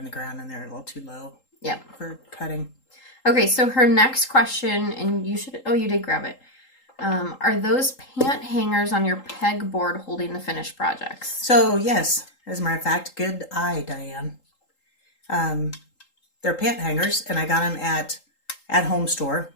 the ground and they're a little too low. Yep. For cutting. Okay, so her next question, and you did grab it. Are those pant hangers on your pegboard holding the finished projects? So, yes. As a matter of fact, good eye, Diane. They're pant hangers, and I got them at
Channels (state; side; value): late; right; 3.8 ms